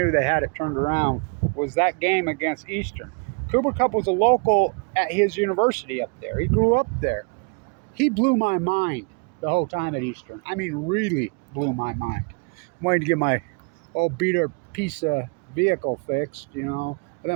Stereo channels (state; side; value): quieter; left; 34.4 dB